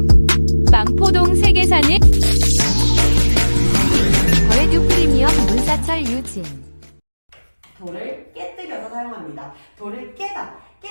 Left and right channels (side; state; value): both; inverted; correlation -1.00